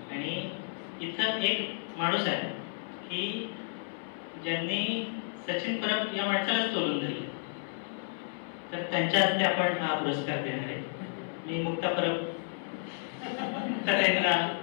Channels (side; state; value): right; silent; 57 dB below the other